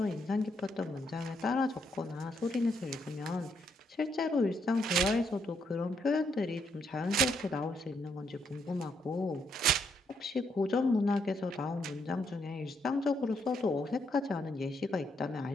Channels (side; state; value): both; normal; correlation 0.75